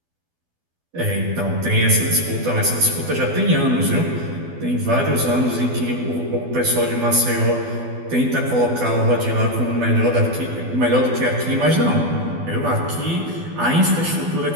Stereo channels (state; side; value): late; left; 12 ms